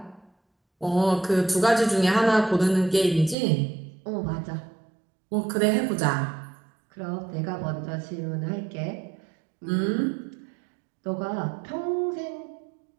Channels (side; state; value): left; drops out; at 3.4 s